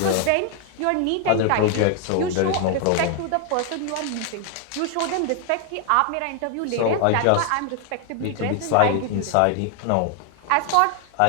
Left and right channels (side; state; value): both; different; correlation 0.00